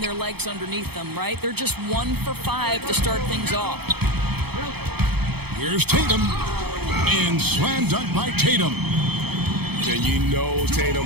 legs underneath them, right? They're just 1 for 5 to start things off. Here's Tatum. And slam dunk by Tatum. And you know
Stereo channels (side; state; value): left; late; 0.97 ms